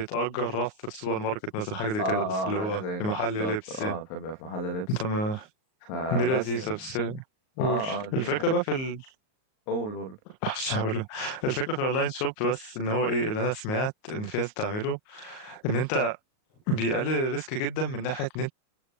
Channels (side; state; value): right; late; 38 ms